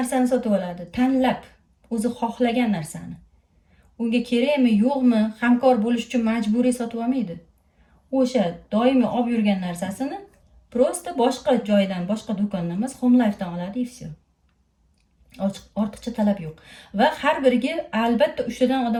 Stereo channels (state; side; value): identical; both; correlation 1.00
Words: sotib oladi, tanlab, o'zi xohlagan narsani. Unga kerakmi, yo'qmi, hamkor bo'lish uchun majburiy sotib olmaydi. O'sha doimiy olib yurgan narsasini prosta boshqa joydan, boshqa do'kondan emas, Home Life'dan oladi, и все. Ortiqcha talab yo'q. Va har biriga albatta 3 tadan